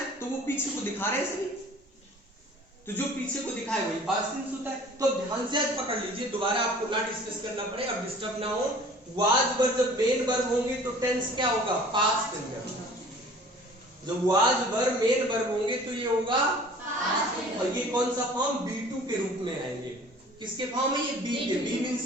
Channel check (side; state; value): both; normal; correlation 0.48